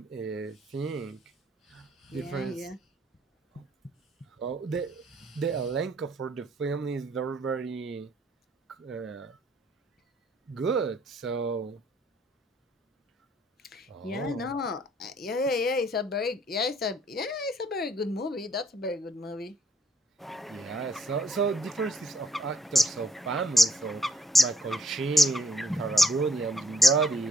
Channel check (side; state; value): both; normal; correlation 0.66